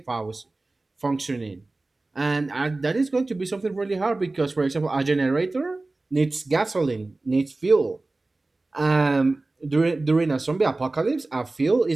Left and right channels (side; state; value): left; quieter; 3.1 dB